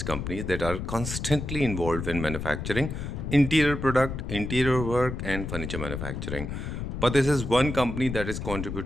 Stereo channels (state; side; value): noise; left; rumble, 5 dB below the sound